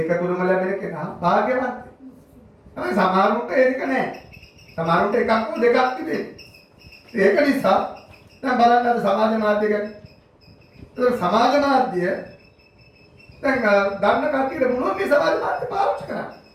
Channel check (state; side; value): identical; both; correlation 1.00